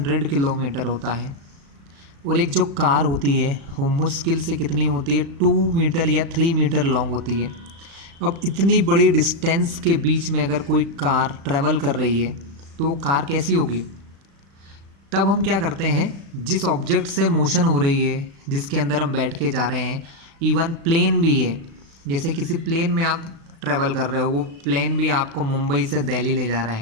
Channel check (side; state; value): left; late; 36 ms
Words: किलोमीटर होता है, और एक जो कार होती है वो मुश्किल से कितनी होती है? 2 मीटर या 3 मीटर लॉन्ग होती है। अब इतनी बड़ी डिस्टेंस के बीच में अगर कोई कार ट्रैवल कर रही है तो वो कार कैसी होगी? तब हम क्या करते हैं, जिस ऑब्जेक्ट से मोशन हो रही है, जिसके अंदर हम बैठ के जा रहे हैं, इवन प्लेन भी है, जैसे किसी प्लेन में आप ट्रैवल कर रहे हो, वो प्लेन भी आपको मुंबई से दिल्ली ले जा रहा